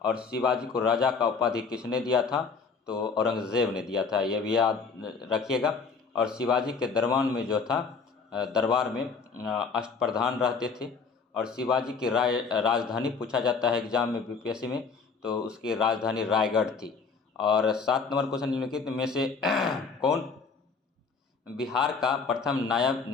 और शिवाजी को राजा का उपाधि किसने दिया था? तो औरंगजेब ने दिया था, यह भी याद रखिएगा। और शिवाजी के दरबार में अष्टप्रधान रहते थे। और शिवाजी की राजधानी पूछा जाता है एग्जाम में बीपीएससी में, तो उसकी राजधानी रायगढ़ थी। और 7 नंबर क्वेश्चन निम्नलिखित में से कौन बिहार का प्रथम नायब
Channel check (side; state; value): right; quieter; 5.1 dB